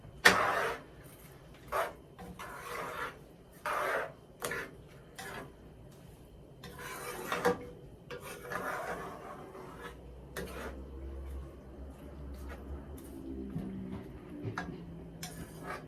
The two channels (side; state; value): both; identical; correlation 1.00